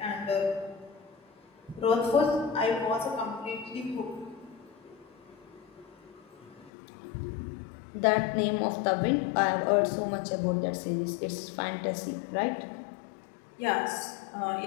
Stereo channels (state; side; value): drops out; right; at 6.7 s